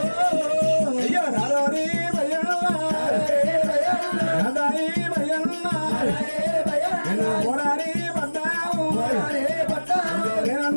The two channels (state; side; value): inverted; both; correlation -1.00